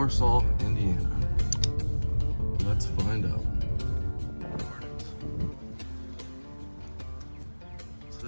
Indiana. Let's find out. So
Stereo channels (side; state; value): both; inverted; correlation -1.00